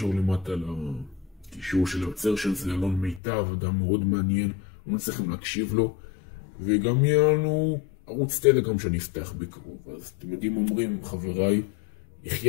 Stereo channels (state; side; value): drops out; right; at 3.2 s